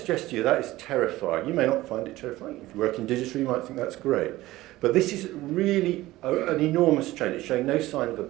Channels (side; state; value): left; quieter; 17.3 dB